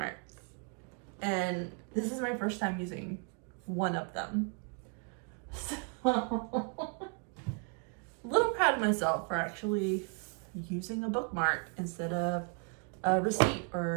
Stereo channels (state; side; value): quieter; left; 38.6 dB